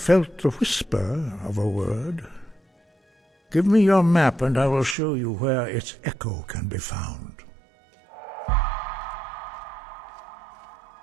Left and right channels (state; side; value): drops out; left; at 5.0 s